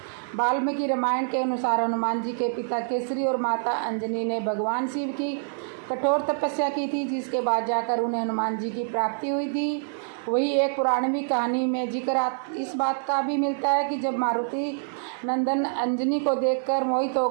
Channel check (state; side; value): silent; left; 61 dB below the other